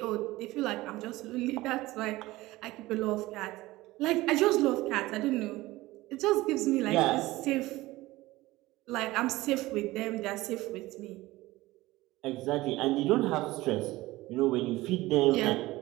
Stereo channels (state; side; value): quieter; left; 18.7 dB